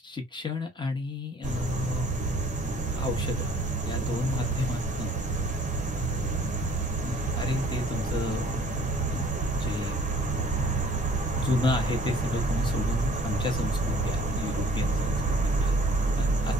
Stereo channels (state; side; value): normal; both; correlation 0.55